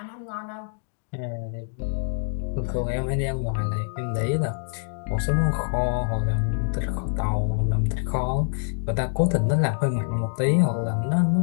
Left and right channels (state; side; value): silent; right; digital silence